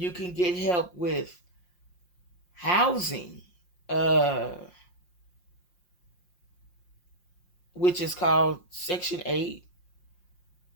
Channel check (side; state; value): right; late; 5.6 ms